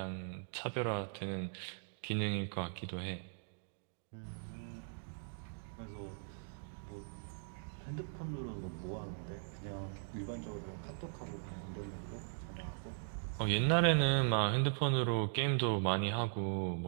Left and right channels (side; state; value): left; silent; digital silence